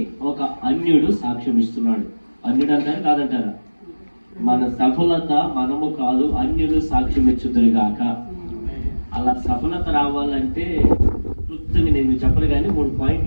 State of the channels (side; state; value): both; inverted; correlation -1.00